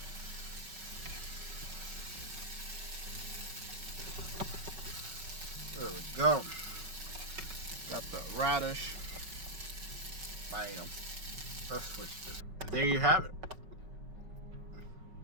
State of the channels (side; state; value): left; late; 5.3 ms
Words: There we go. Got the radish. Bam. Let's switch this. There you have it.